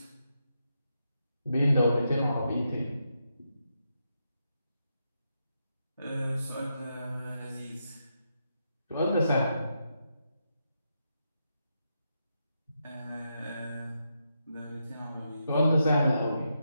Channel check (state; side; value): inverted; both; correlation -0.83